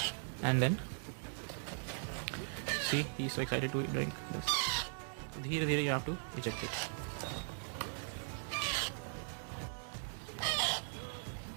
and then see he is so excited to drink this. धीरे धीरे you have to reject it.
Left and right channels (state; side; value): silent; left; digital silence